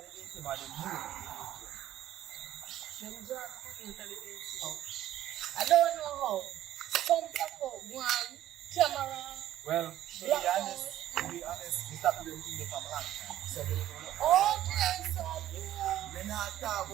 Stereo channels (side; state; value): left; quieter; 12.8 dB